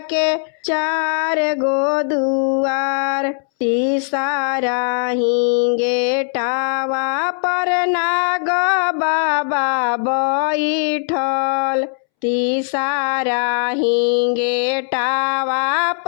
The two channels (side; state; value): right; silent; 67 dB below the other